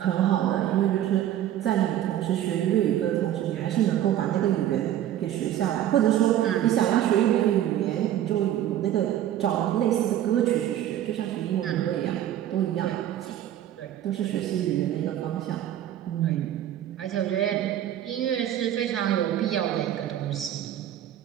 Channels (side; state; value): left; quieter; 11.8 dB